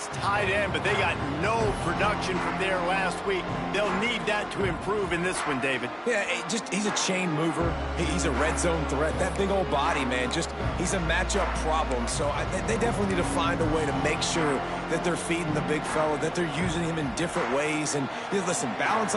tight end, but they got no production from there last week. They'll need that to improve in this one, David. Yeah, he's a chain mover. He's a red zone threat. That big old body, man, he's a matchup problem. So they definitely need to find a way to make sure that they're feeding the big fella, that they're using him in different ways. And listen, balance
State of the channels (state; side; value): identical; both; correlation 1.00